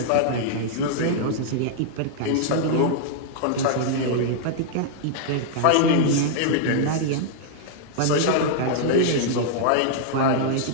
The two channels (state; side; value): different; both; correlation -0.01